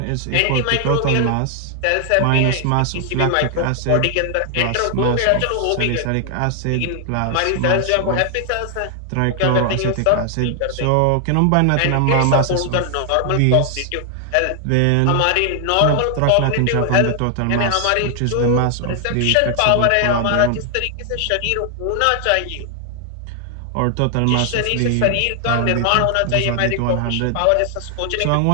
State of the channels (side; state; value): both; different; correlation 0.00